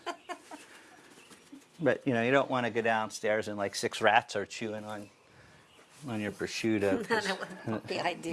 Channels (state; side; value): identical; both; correlation 1.00